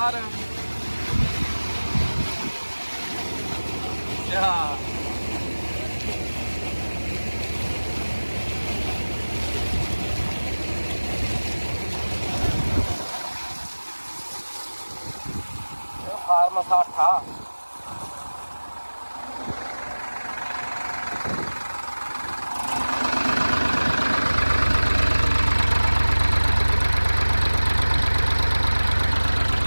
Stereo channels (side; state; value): both; inverted; correlation -1.00